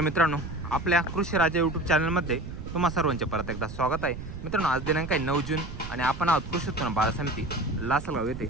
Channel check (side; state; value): right; noise; rumble, 10 dB below the sound